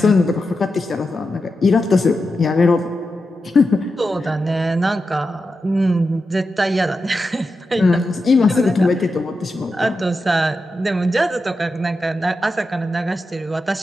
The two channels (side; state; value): both; normal; correlation 0.89